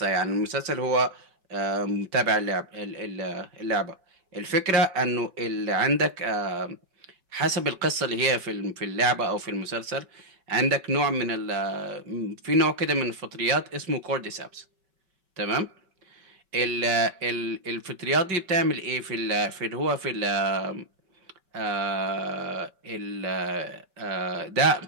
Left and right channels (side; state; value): left; late; 5.2 ms